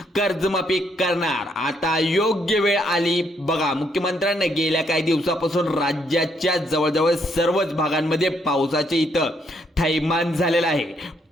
कर्जमाफी करणार। आता योग्य वेळ आली। बघा मुख्यमंत्र्यांनी गेल्या काही दिवसापासून राज्याच्या जवळजवळ सर्वच भागांमध्ये पावसाचे इथं थैमान झालेला आहे।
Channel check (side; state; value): both; normal; correlation 0.73